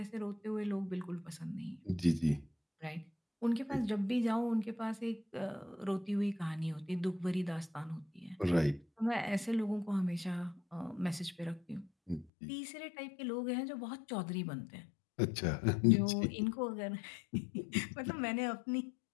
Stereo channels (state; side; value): drops out; right; at 12.2 s